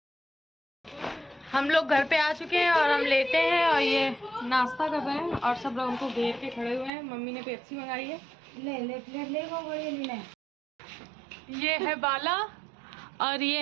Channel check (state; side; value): drops out; left; at 6.9 s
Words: हम लोग घर पे आ चुके हैं और हम लेटे हैं और ये नाश्ता कर रहे हैं और सब लोग उनको घेर के खड़े हुए हैं। मम्मी ने पेप्सी मंगाई है। ले ये है बाला और ये